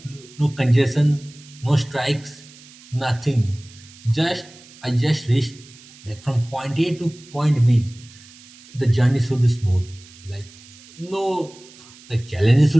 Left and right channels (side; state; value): right; noise; hiss, 22 dB below the sound